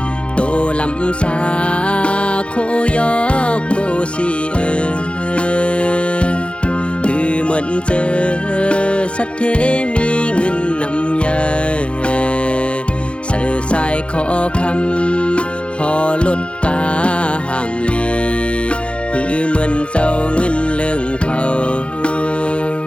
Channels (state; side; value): late; right; 0.058 ms